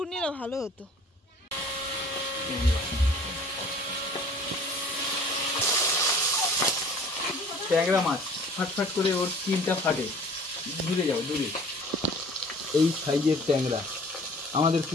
নিলে ভালো হতো। ট্যাংরা মাছ ফাটফাট করে ওর স্কিনটা ফাটে। দূরে যাও, দূরে। এই সাইজের ট্যাংরা আমাদের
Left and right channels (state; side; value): normal; both; correlation 0.49